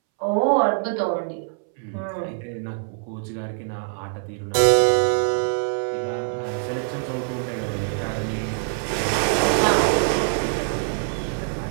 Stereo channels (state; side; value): silent; left; 63 dB below the other